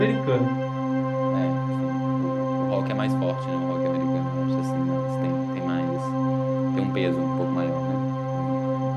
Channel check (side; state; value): both; identical; correlation 1.00